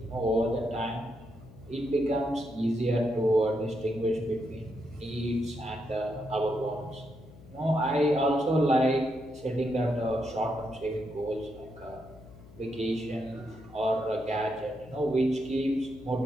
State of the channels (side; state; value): left; noise; hum, 20 dB below the sound